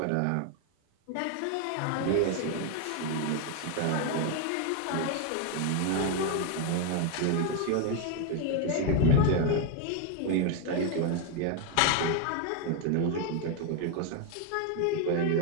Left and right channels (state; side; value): different; both; correlation 0.01